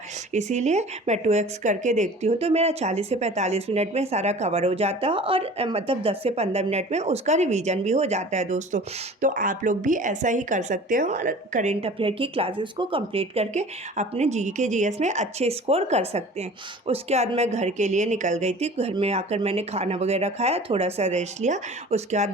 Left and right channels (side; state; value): both; normal; correlation 0.43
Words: इसीलिए मैं 2x करके देखती हूँ, तो मेरा 40 से 45 मिनट में सारा कवर हो जाता है और मतलब 10 से 15 मिनट में उसका रिवीजन भी हो जाता है दोस्तों। तो आप लोग भी ऐसा ही कर सकते हो और करेंट अफेयर की क्लासेस को कंप्लीट करके अपने जीके जीएस में अच्छे स्कोर कर सकते हैं। उसके बाद मैं घर के लिए निकल गई थी। घर में आकर मैंने खाना वगैरह खाया, थोड़ा सा रेस्ट लिया। उसके बाद